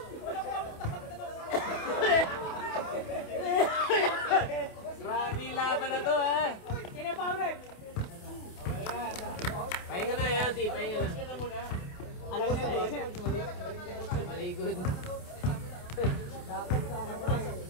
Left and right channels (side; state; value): right; late; 28 ms